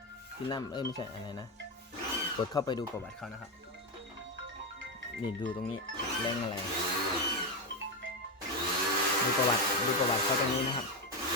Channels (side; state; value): both; normal; correlation 0.10